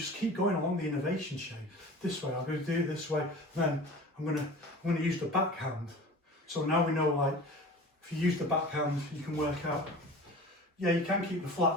keep going along the innovation chain. This way, I'm going to do it this way, then I'm going to use the backhand. So now we know, like, if you use the backhand, you can work out, yeah, you can keep the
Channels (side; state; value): both; normal; correlation 0.38